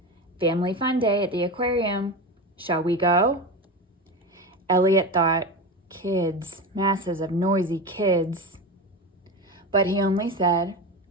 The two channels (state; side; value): normal; both; correlation 0.23